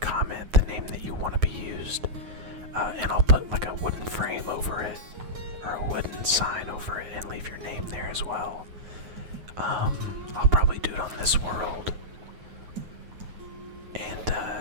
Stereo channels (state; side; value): late; left; 9.3 ms